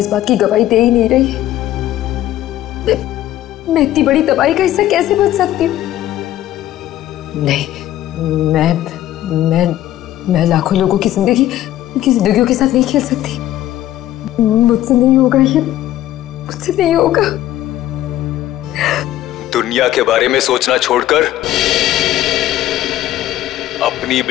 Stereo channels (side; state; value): right; quieter; 13.6 dB